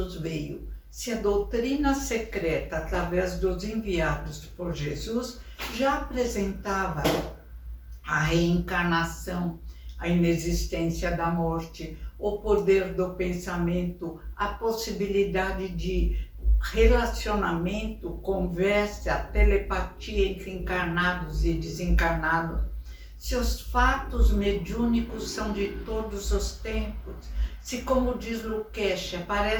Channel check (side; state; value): both; identical; correlation 1.00